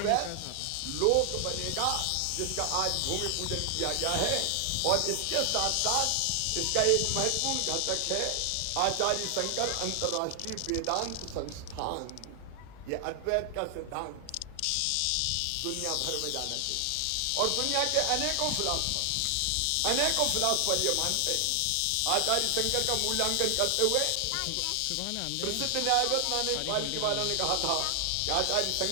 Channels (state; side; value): different; both; correlation 0.00